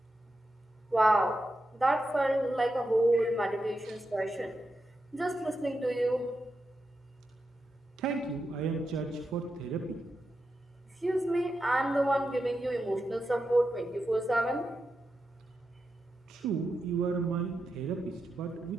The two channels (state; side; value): normal; both; correlation 0.88